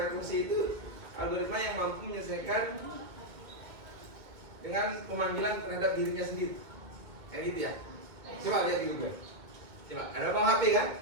itu algoritma yang mampu menyelesaikan dengan pemanggilan terhadap dirinya sendiri, kayak gitu ya? Coba lihat di Google. Coba, ada bang HP kan?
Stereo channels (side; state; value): left; late; 2.2 ms